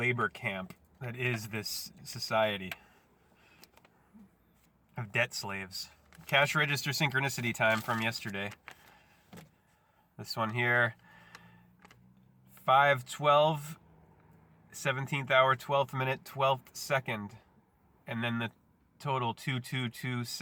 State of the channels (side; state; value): both; identical; correlation 1.00